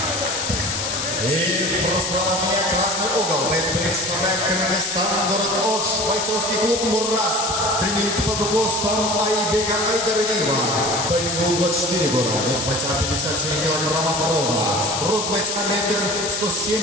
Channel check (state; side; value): noise; left; hiss, 2 dB below the sound